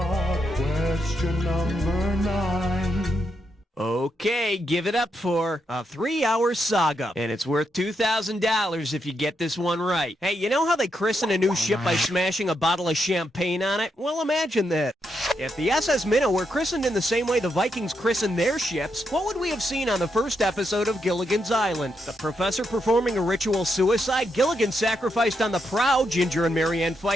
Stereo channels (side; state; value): both; normal; correlation 0.81